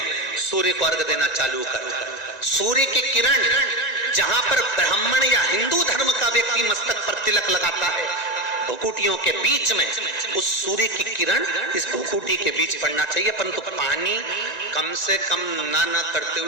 सूर्य को अर्घ देना चालू कर। सूर्य की किरण जहां पर ब्राह्मण या हिंदू धर्म का व्यक्ति मस्तक पर तिलक लगाता है, भुकुटियों के बीच में उस सूर्य की किरण इस भुकुटी के बीच पड़ना चाहिए, परंतु पानी कम से कम ना करते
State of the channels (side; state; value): right; late; 1.9 ms